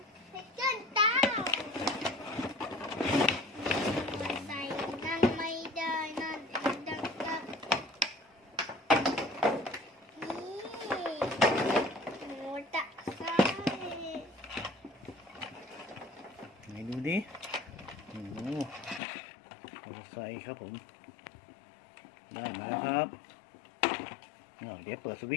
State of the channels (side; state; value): right; drops out; at 19.0 s